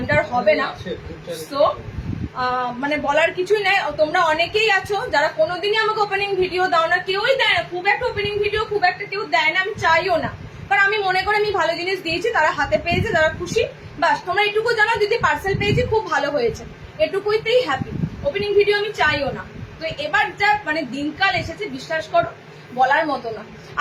হবে না। সো মানে বলার কিছুই নাই। তোমরা অনেকেই আছো যারা কোনোদিনই আমাকে ওপেনিং ভিডিও দাও না, কেউই দেয় না, খুব একটা ওপেনিং ভিডিও খুব একটা কেউ দেয় না, আমি চাইও না, কারণ আমি মনে করি আমি ভালো জিনিস দিয়েছি, তারা হাতে পেয়েছে, তারা খুশি, বাস। তোমরা এটুকু জানো দিদি পার্সেল পেয়েছি, খুব ভালো হয়েছে, এটুকুইতেই হ্যাপি। ওপেনিং ভিডিও আমি চাইও না। তো এবার যা মানে দিনকাল এসেছে, বিশ্বাস করো বলার মতো না।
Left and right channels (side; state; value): both; identical; correlation 1.00